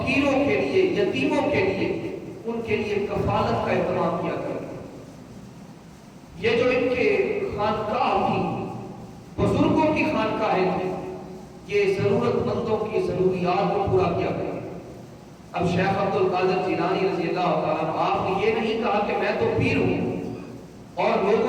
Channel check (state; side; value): identical; both; correlation 1.00